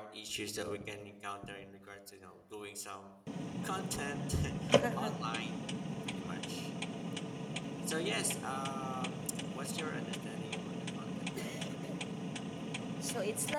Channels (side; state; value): both; identical; correlation 1.00